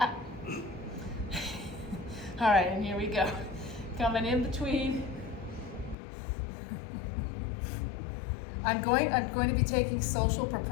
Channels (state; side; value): drops out; right; at 6.0 s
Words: right, and here we go. Coming in between. I'm going to be taking social